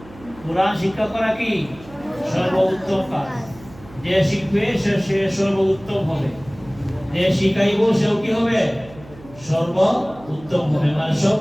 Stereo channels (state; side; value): noise; right; hum, 20 dB below the sound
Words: কোরআন শিক্ষা করা কি সর্বোত্তম কাজ। যে শিখবে সে সর্বোত্তম হবে, যে শিখাইব সেও কি হবে? সর্বোত্তম হবে। মানে